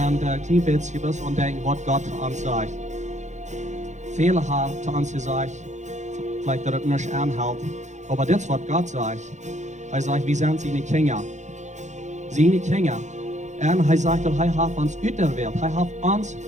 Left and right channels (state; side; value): late; left; 0.34 ms